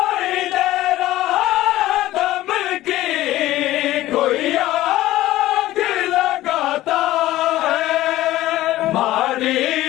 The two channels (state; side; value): quieter; right; 15.6 dB